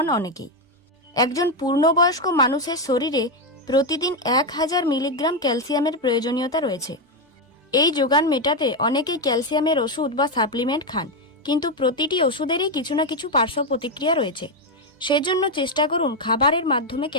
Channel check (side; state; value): both; normal; correlation 0.06